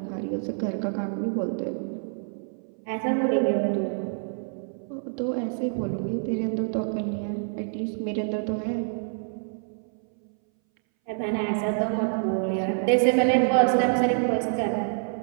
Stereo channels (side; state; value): left; silent; 60 dB below the other